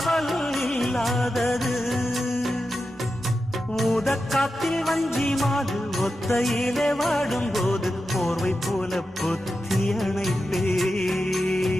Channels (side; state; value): both; normal; correlation 0.90